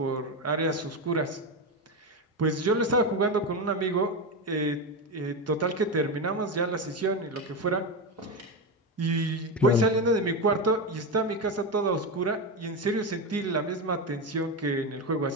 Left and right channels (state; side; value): normal; both; correlation 0.15